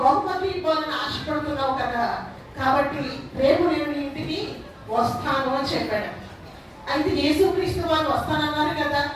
బహుమతి ఇవ్వాలని ఆశపడుతున్నావు కదా, కాబట్టి రేపు నేను నీ ఇంటికి వస్తాను అని చెప్పాడు. అయితే యేసుక్రీస్తు వారు వస్తానన్నారు కదా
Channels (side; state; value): both; identical; correlation 1.00